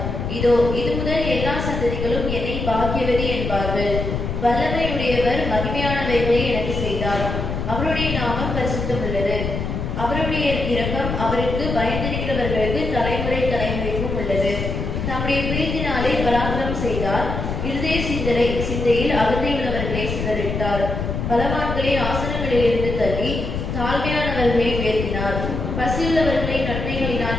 இதோ, இது முதல் எல்லா சந்ததிகளும் என்னை பாக்கியவதி என்பார்கள். வல்லமையுடையவர் மகிமையானவைகளை எனக்கு செய்தார். அவருடைய நாமம் பரிசுத்தம் உள்ளது. அவருடைய இரக்கம் அவருக்கு பயந்திருக்கிறவர்களுக்கு தலைமுறை தலைமுறைக்கும் உள்ளது. தம்முடைய பிரீத்தினாலே பராக்கிரமம் செய்தார். இருதய சிந்தையில் அகந்தை உள்ளவர்களை சிதறிட்டார். பலவான்களை ஆசனங்களிலிருந்து தள்ளி தாழ்மையானவர்களை உயர்த்தினார். பசியுள்ளவர்களை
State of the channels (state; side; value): noise; left; rumble, 3 dB below the sound